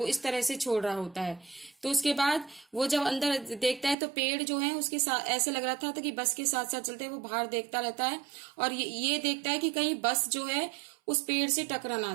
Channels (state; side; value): drops out; left; at 4.0 s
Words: इस तरह से छोड़ रहा होता है। तो उसके बाद वो जब अंदर देखता है तो पेड़ जो है उसके साथ ऐसे लग रहा था कि बस के साथ साथ चलते वो बाहर देखता रहता है और ये देखता है कि कहीं बस जो है उस पेड़ से टकरा ना